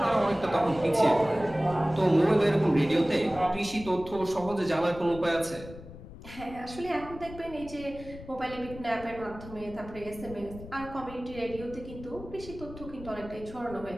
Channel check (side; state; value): left; noise; rumble, 15 dB below the sound